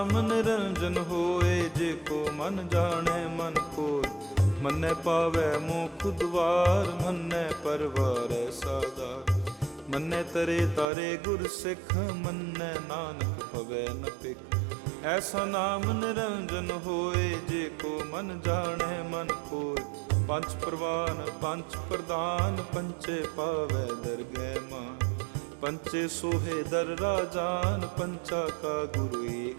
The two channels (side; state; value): left; drops out; at 10.9 s